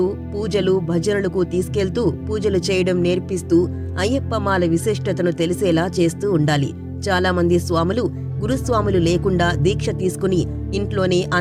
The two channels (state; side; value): identical; both; correlation 1.00